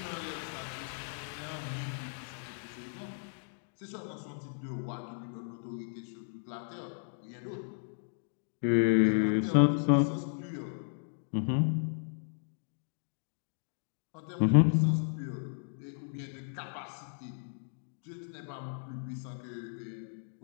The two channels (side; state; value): right; silent; digital silence